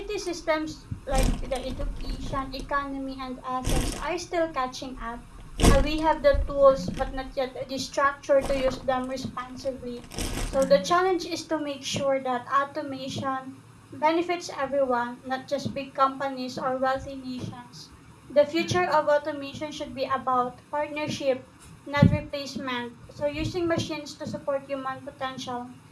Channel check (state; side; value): identical; both; correlation 1.00